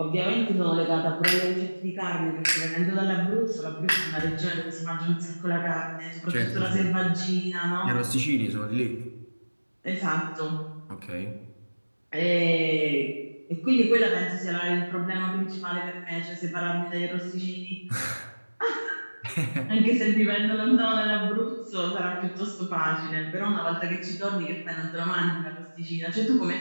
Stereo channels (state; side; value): inverted; both; correlation -1.00